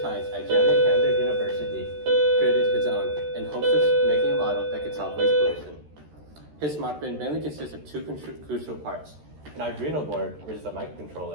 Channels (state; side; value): late; left; 13 ms